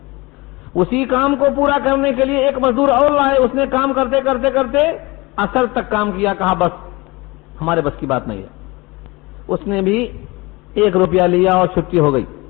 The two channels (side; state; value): right; quieter; 23.7 dB